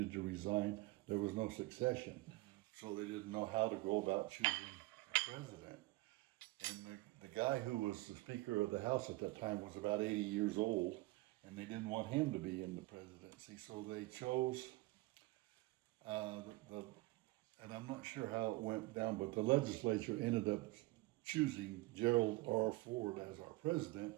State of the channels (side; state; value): left; quieter; 21.3 dB